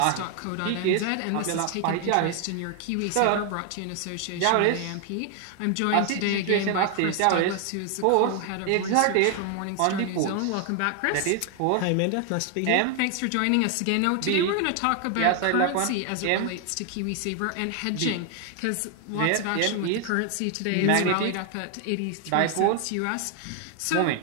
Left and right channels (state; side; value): different; both; correlation 0.00